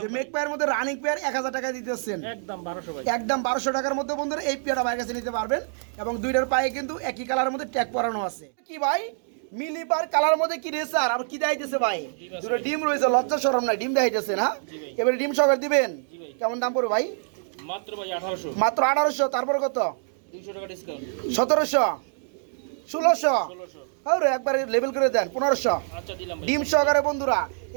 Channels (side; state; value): left; silent; digital silence